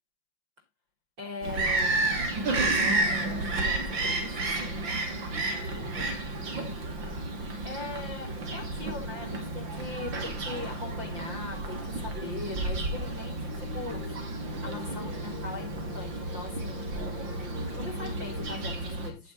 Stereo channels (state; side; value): late; left; 5.8 ms